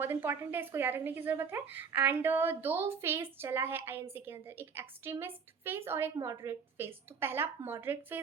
इंपॉर्टेंट है, इसको याद रखने की जरूरत है। एंड दो फेज चला है आईएनसी के अंदर, एक एक्सट्रीमिस्ट फेज और एक मॉडरेट फेज। तो पहला मॉडरेट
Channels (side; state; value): left; quieter; 6.1 dB